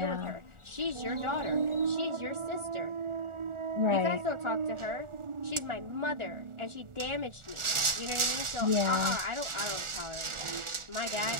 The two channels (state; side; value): late; left; 1.4 ms